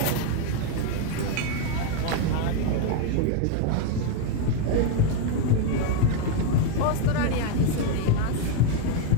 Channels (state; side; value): different; both; correlation 0.01